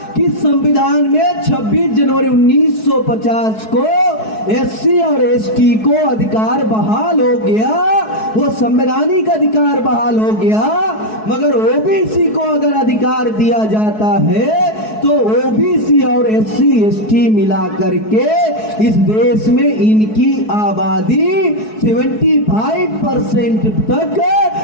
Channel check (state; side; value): late; right; 4.7 ms